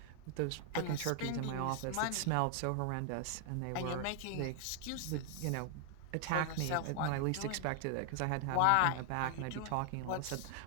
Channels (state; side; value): different; both; correlation 0.00